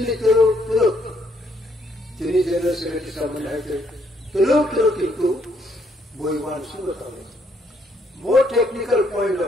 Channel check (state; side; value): normal; both; correlation 0.71